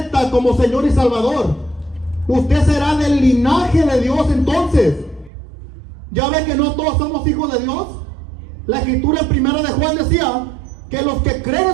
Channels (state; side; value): drops out; left; at 5.3 s